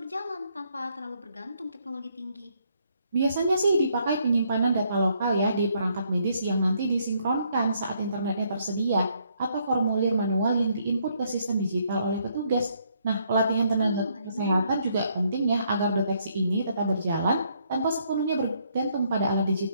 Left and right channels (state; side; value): inverted; both; correlation -0.71